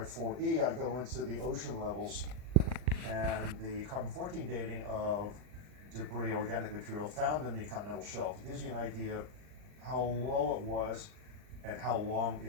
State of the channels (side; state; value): left; late; 39 ms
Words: 4E, I go into the ocean levels and the carbon-14 dating of debris, organic material found in the continental shelf. It gives you an idea of how low it was and how long